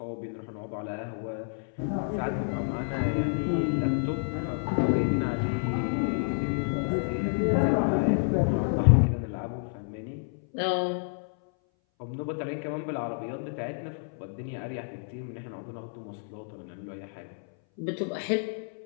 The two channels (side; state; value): right; silent; 58 dB below the other